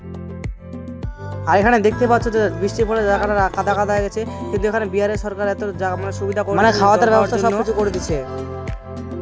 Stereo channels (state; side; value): identical; both; correlation 1.00